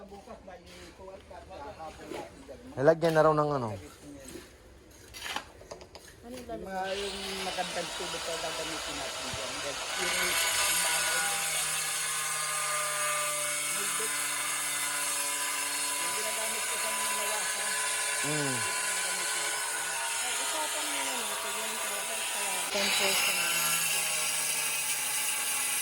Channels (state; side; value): identical; both; correlation 1.00